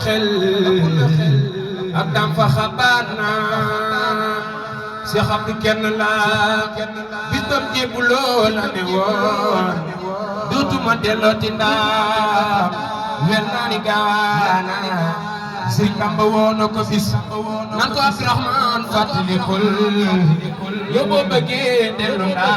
xel ak dam fa xabaat na Seex Abdu kenn la bis bam jébbuloo la ne woon dootuma dellooti ndaam wel naa ni gaana Sëriñ Bamba woo na ko bis nan ko Abdurahmaan fàttalikul yow boo bëggee dellu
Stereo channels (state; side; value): identical; both; correlation 1.00